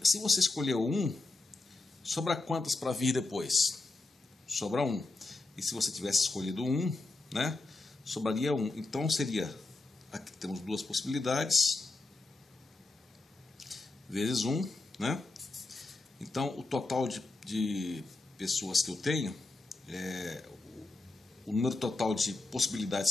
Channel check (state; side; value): quieter; right; 3.2 dB